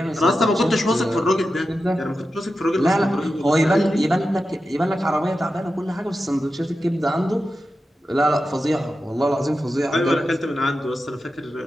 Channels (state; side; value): normal; both; correlation 0.91